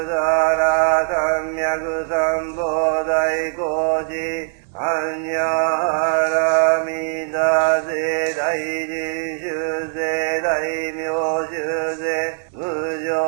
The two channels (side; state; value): left; silent; digital silence